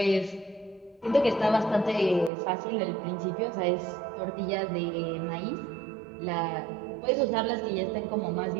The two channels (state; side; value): drops out; left; at 2.3 s